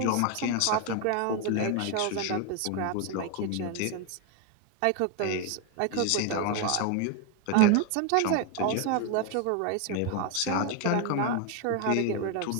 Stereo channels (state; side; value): different; both; correlation 0.01